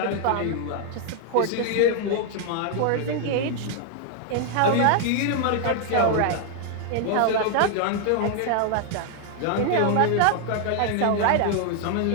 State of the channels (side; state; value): both; different; correlation 0.00